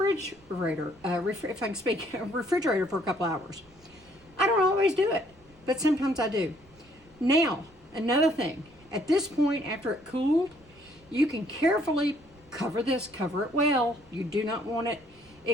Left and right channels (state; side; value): noise; right; rumble, 27 dB below the sound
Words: if I can speak, refrigerator for a couple hours. I don't always do it, but sometimes I do. Now, another thing, at this point after it cooled, you can carefully cover it well. You do not want it